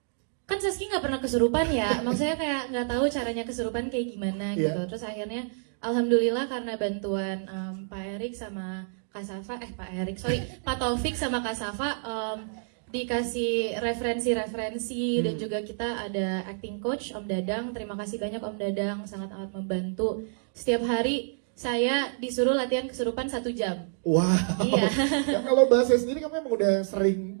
kan Saski nggak pernah kesurupan ya, maksudnya kayak nggak tahu caranya kesurupan kayak gimana gitu. Iya. Terus akhirnya alhamdulillah karena bantuan Pak Erik sama Kak Safa, Pak Taufik sama Kak Safa dikasih referensi-referensi dan juga kita ada acting coach Om Dadang. Terima kasih banyak Om Dadang, sangat amat membantu. Setiap hari saya disuruh latihan kesurupan 1 jam. Wow. Iya. Ya, kalau bahasa sendiri kamu emang udah sering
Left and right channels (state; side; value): silent; left; digital silence